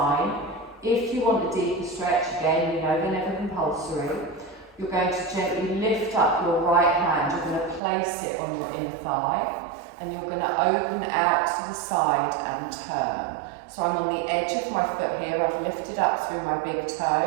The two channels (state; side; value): drops out; left; at 7.8 s